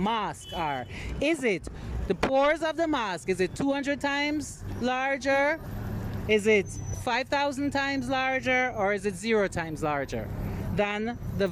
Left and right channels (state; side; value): identical; both; correlation 1.00